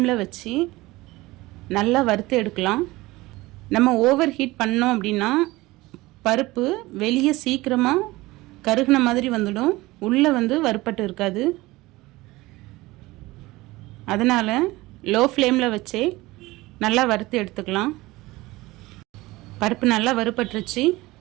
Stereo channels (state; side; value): quieter; left; 20.0 dB